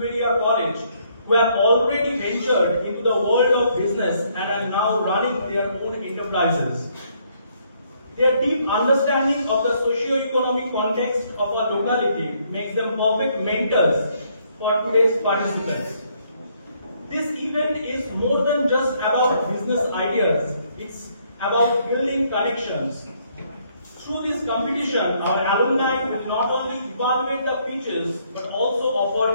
College who have already ventured into the world of business and are now running their own enterprises. Their deep understanding of the socio-economic context of our locality makes them perfect mentors for today's participants. This event is more than just about business ideas, it's about building connections. Through this competition, our alumni will not only evaluate the pitches but also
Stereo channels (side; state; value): both; inverted; correlation -0.69